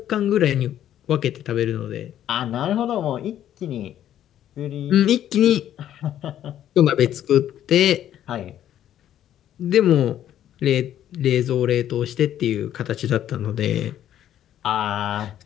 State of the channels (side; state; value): right; quieter; 11.2 dB